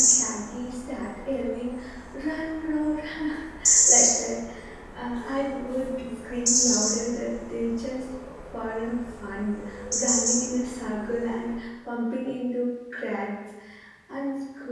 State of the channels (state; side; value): identical; both; correlation 1.00